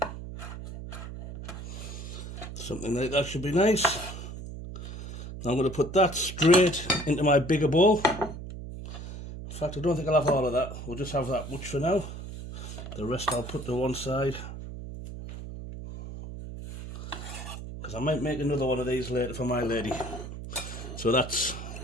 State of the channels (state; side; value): noise; right; hum, 10 dB below the sound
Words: Something like that should be nice. Now I'm going to put that straight into my bigger bowl. In fact, I don't think I'll have all of that. We'll just have that much for now. The rest I'll put to one side. Because I might make another one of these later for my lady. So that's